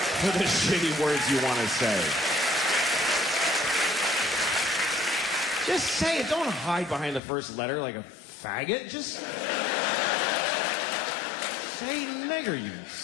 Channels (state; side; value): drops out; right; at 7.2 s